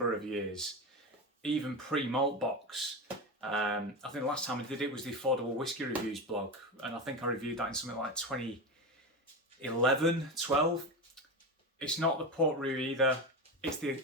of years, even pre-Maltbox, I think the last time I did it was the Affordable Whiskey Reviews blog, and I think I reviewed that in something like 2011, 12. It's not the Port Roux either, it's the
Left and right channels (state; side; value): normal; both; correlation 0.20